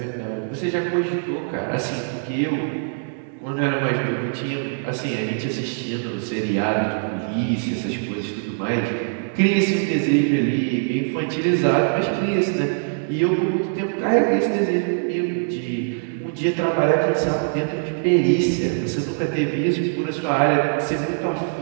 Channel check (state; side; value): silent; left; digital silence